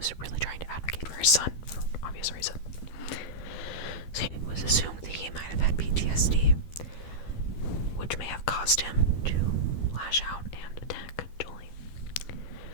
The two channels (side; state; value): right; late; 12 ms